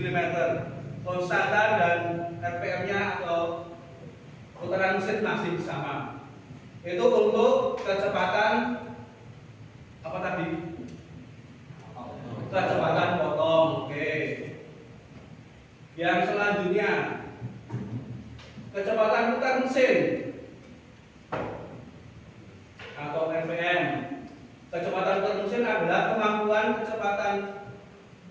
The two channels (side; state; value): both; identical; correlation 1.00